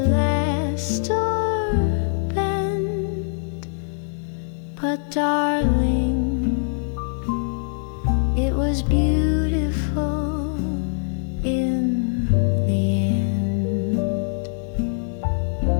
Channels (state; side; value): silent; right; digital silence